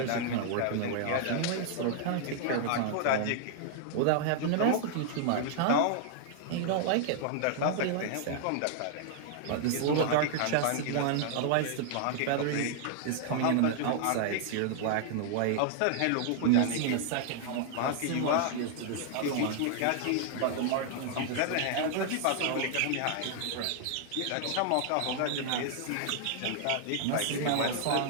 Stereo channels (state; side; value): different; both; correlation 0.00